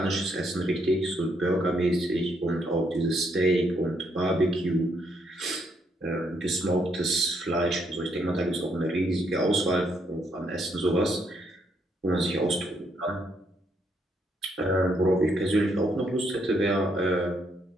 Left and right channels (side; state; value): both; normal; correlation 0.74